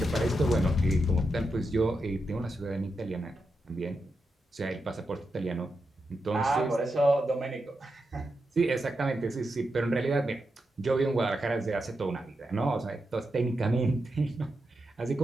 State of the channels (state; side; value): normal; both; correlation 0.87